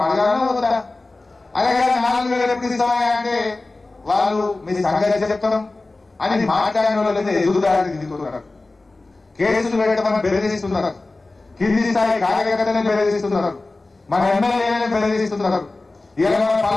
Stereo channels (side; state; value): right; quieter; 3.2 dB